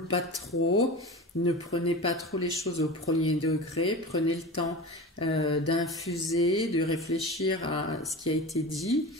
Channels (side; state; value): both; normal; correlation 0.31